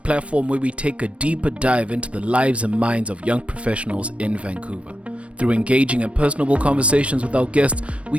where we take a deeper dive into the lives and minds of young professionals in Vancouver. Through engaging and personable conversations with our guests,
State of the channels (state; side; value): late; left; 0.062 ms